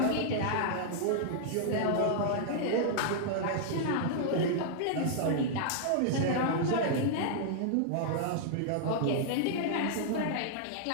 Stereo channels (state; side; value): different; both; correlation -0.01